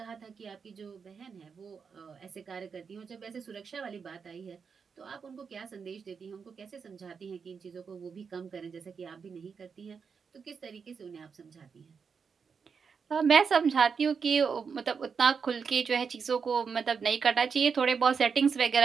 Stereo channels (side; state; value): left; quieter; 5.9 dB